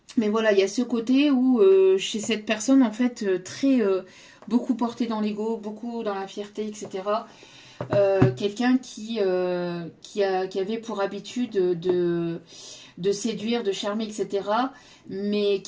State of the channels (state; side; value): identical; both; correlation 1.00